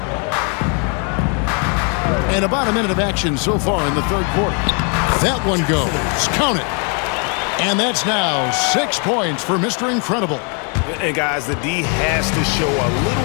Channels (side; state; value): right; quieter; 37.7 dB